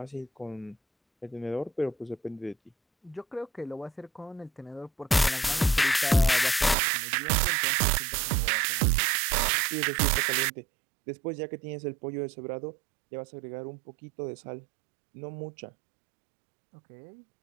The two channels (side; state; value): left; drops out; at 6.8 s